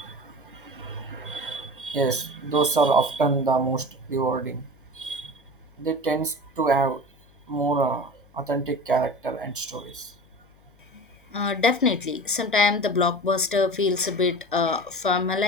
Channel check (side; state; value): left; noise; hum, 29 dB below the sound